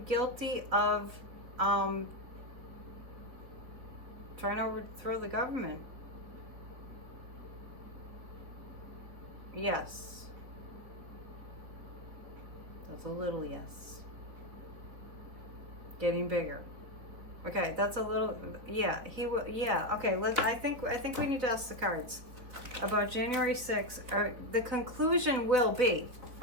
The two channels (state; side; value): late; left; 4.2 ms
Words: guilty of trying to overthrow the government? Yes. That's a little yes. Getting bigger. Okay, that's a little, yeah, he will, yeah, okay, I think we need to ask the cards about January 6th. Or the conclusion will be